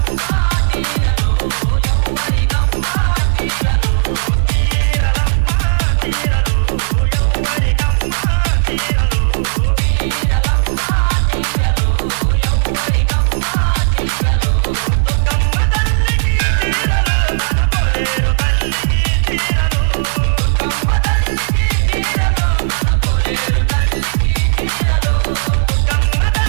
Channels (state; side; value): silent; left; digital silence